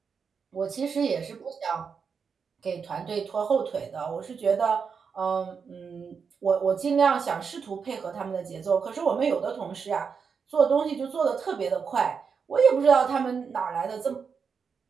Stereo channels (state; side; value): quieter; left; 6.0 dB